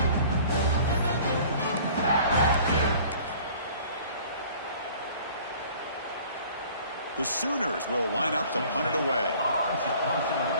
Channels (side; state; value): both; inverted; correlation -0.50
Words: The Sooners will line up to punt it away. On to punt it